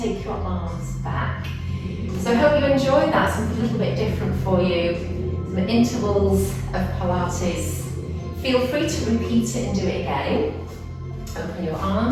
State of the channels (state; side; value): identical; both; correlation 1.00